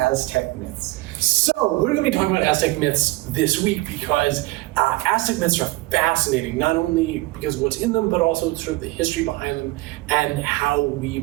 myths. So, we're going to be talking about Aztec myths this week because Aztec myths are fascinating, not only because of what's in them, but also sort of the history behind them and how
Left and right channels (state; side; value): quieter; left; 20.3 dB